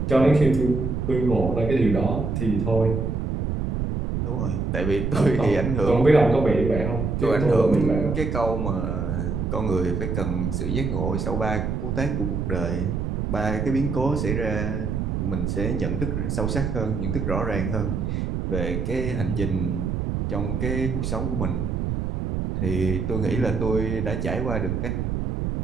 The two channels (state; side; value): noise; right; rumble, 1 dB below the sound